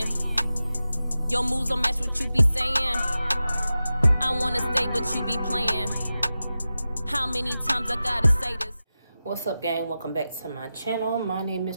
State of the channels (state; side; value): inverted; both; correlation -0.93